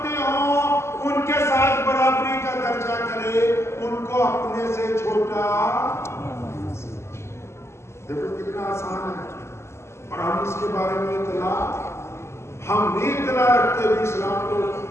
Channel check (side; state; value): right; late; 0.13 ms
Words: ہوں ان کے ساتھ برابری کا درجہ کرے، ان کو اپنے سے چھوٹا. دیکھو کتنا آسان ہے. اور ہم اس کے بارے میں ہم نہیں اطلاع رکھتے بھی. اسلام کو